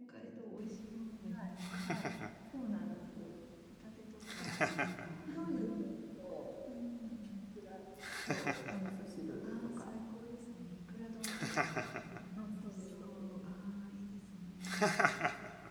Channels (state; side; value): identical; both; correlation 1.00